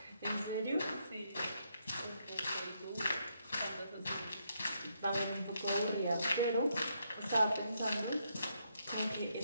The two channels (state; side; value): inverted; both; correlation -0.76